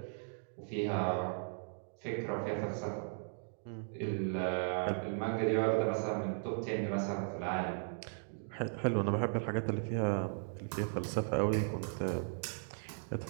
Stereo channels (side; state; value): left; silent; digital silence